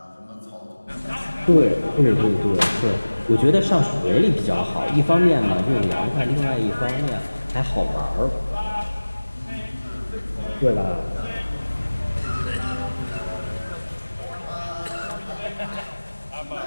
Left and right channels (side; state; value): both; inverted; correlation -1.00